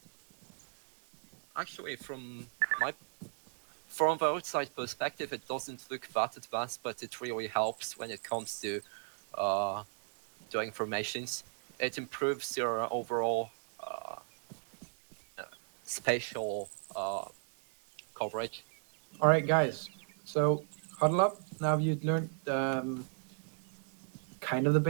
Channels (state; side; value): silent; left; 54 dB below the other